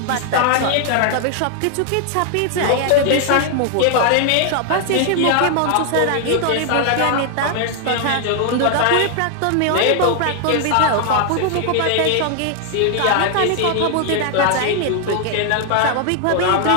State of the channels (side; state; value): both; different; correlation 0.00